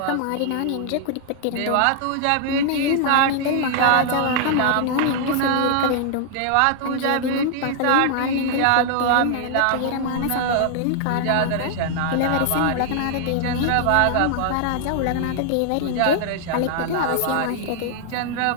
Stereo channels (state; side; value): different; both; correlation -0.01